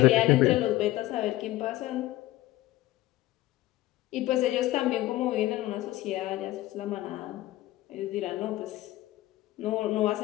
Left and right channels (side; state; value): right; quieter; 16.4 dB